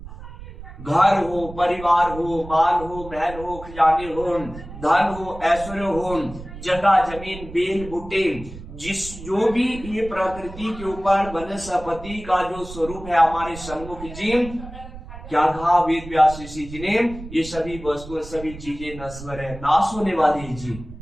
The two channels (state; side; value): noise; right; rumble, 14 dB below the sound